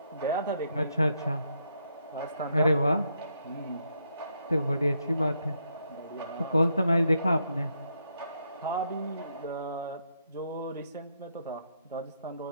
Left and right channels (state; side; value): inverted; both; correlation -0.77